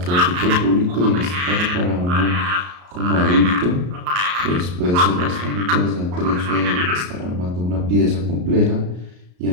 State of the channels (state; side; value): late; left; 34 ms